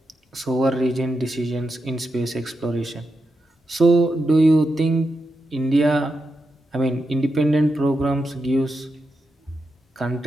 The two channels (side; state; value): both; normal; correlation 0.87